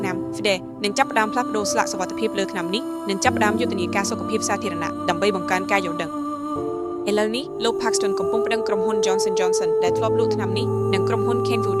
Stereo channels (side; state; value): both; identical; correlation 1.00